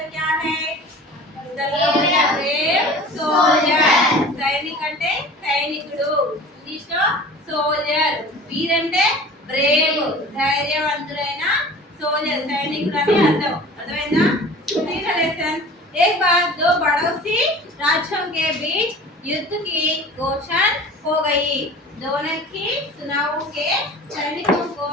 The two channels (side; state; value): both; normal; correlation 0.41